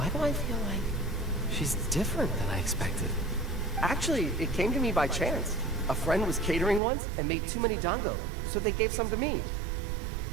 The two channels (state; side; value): drops out; left; at 6.8 s